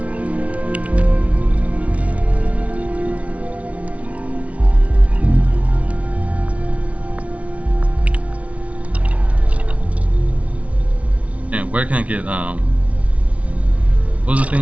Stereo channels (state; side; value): late; left; 0.065 ms